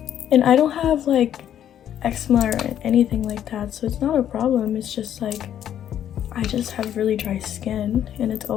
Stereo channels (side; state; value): right; quieter; 10.4 dB